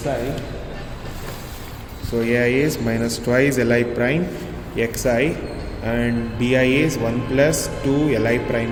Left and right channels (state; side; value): identical; both; correlation 1.00